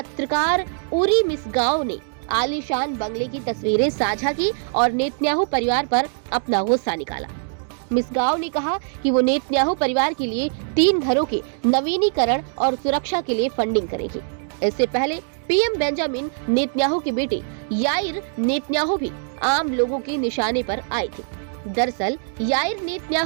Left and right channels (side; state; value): left; silent; 64 dB below the other